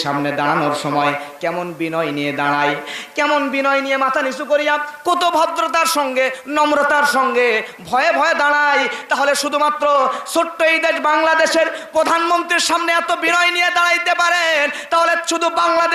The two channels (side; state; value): both; identical; correlation 1.00